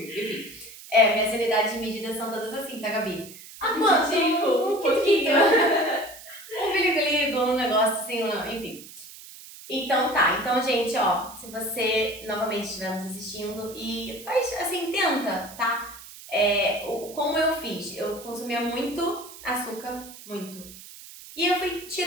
Enfim. Minhas unidades de medida são todas assim, tá, Gabi? Quanto? Um pouquinho. Um biligo-ligo, um negócio assim, enfim. Então tá, então gente, ó, se você novamente estiver nos assistindo e faz assim, tenta, tá? Como eu fiz, eu consumia muito açúcar, muito. E eu fui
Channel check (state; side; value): noise; right; hiss, 16 dB below the sound